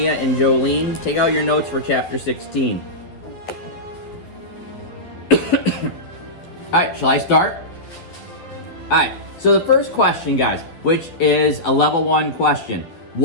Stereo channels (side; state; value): right; late; 12 ms